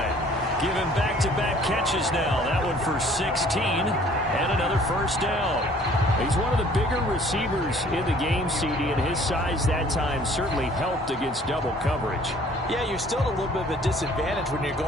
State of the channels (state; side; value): normal; both; correlation 0.55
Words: Give him back-to-back catches now. That one for 16 and another first down. He's one of the bigger receivers in the game, CD, and his size that time certainly helped against double coverage. Yeah, you're still at a little bit of a disadvantage when you're